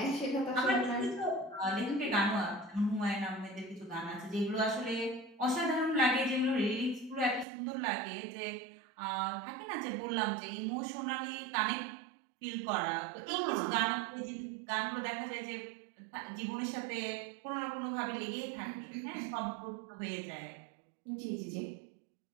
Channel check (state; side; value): drops out; left; at 7.5 s